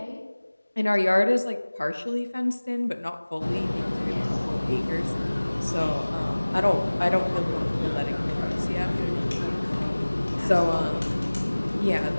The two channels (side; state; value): both; inverted; correlation -1.00